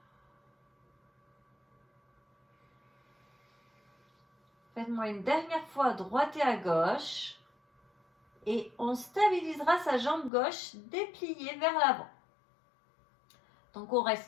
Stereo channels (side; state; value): right; drops out; at 10.3 s